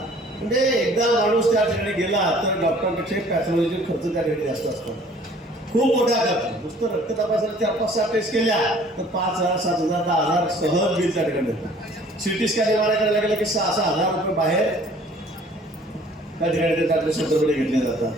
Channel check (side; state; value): both; normal; correlation 0.54